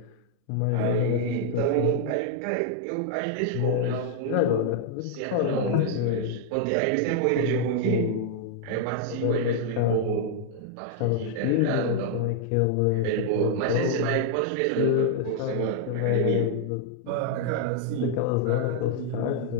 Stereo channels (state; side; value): different; both; correlation 0.00